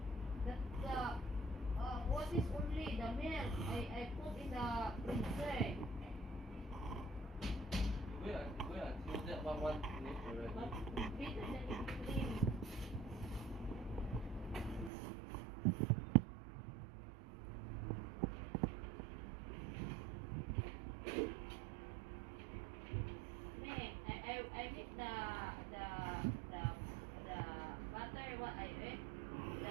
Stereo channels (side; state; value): left; drops out; at 14.9 s